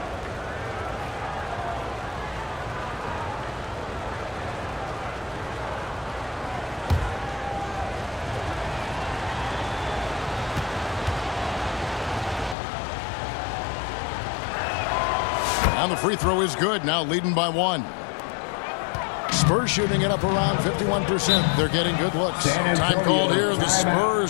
And the free throw is good, now leading by 1. Spurs shooting it up around 51%. They're getting good looks. Time called here. The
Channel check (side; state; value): right; drops out; at 12.6 s